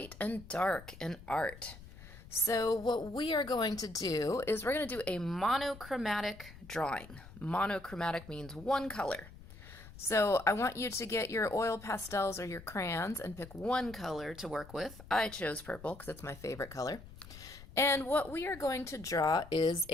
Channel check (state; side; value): noise; left; rumble, 17 dB below the sound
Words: and dark in art. So what we are going to do is we're going to do a monochromatic drawing. Monochromatic means one color. So I want you to get your oil pastels or your crayons and pick one color to work with. I chose purple because it's my favorite color. And what we are going to draw is